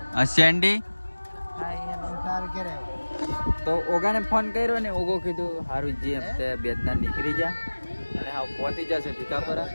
આ સેન્ડી. તો ઓગાને ફોન કર્યો ને ઓગો કીધું સારું જી હપ્તે બેદના નીકળી જા અને હા પહોંચી જશે ભીખાપુરા.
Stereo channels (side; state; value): both; inverted; correlation -1.00